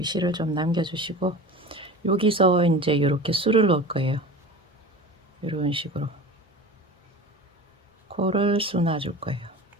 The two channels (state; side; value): normal; both; correlation 0.34